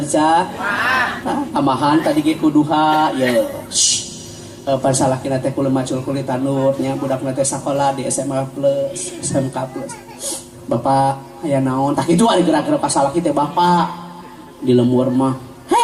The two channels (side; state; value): both; identical; correlation 1.00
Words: Tamahan tadi ge kuduha ya. Pan salakina teh kudu macul kulit tanur nya budakna teh sakola di SMA plus, SMK plus. Bapak aya naon? Tak kitu ari gerak-gerak ka salaki teh bapak di lemur mah.